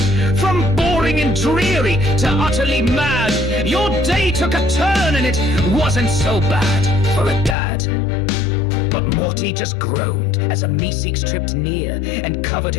From boring and dreary to utterly mad, your day took a turn and it wasn't so bad for a dad. But Morty just groaned as a Meeseeks tripped near and covered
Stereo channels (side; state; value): right; drops out; at 7.6 s